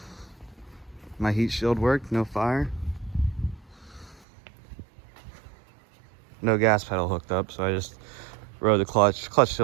My heat shield worked, no fire. No gas pedal hooked up, so I just rode the clutch. Clutch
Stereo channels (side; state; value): left; drops out; at 4.2 s